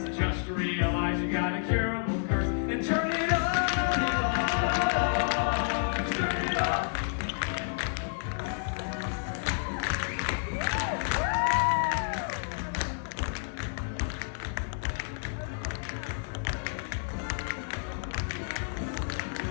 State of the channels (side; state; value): right; silent; digital silence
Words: So just realize you got a curable curse and turn it off. Turn it off.